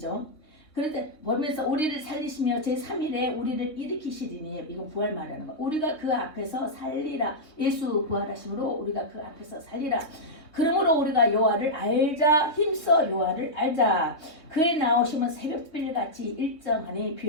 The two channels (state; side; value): late; right; 3.2 ms